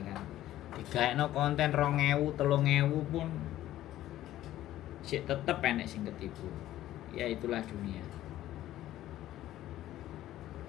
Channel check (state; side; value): quieter; right; 13.8 dB